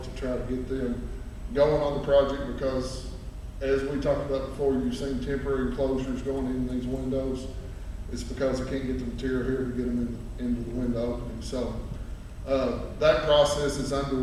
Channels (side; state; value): both; identical; correlation 1.00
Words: to try to get them going on the project, because as we talked about before, you've seen temporary enclosures going in these windows. It's because they can't get the material here to get them into the window opening. So That process is